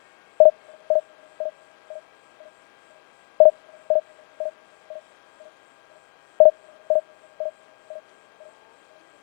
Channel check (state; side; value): silent; right; 67 dB below the other